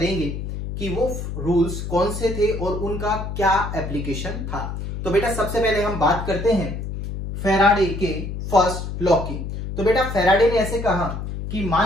कि वो रूल्स कौन से थे और उनका क्या एप्लीकेशन था। तो बेटा सबसे पहले हम बात करते हैं फैराडे के फर्स्ट लॉ की। तो बेटा फैराडे ने ऐसे कहा कि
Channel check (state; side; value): noise; left; hum, 6 dB below the sound